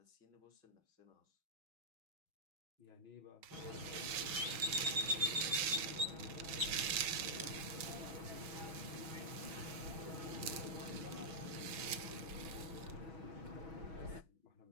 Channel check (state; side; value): late; left; 7.0 ms